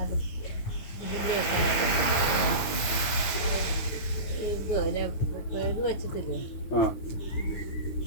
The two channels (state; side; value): late; right; 9.5 ms